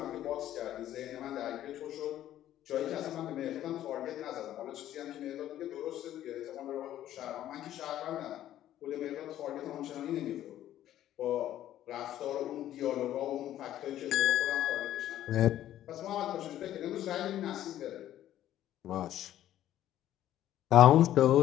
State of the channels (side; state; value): right; quieter; 12.4 dB